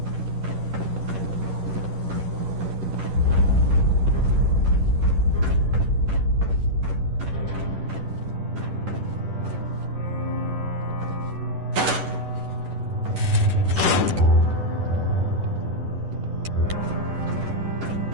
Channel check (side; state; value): left; late; 11 ms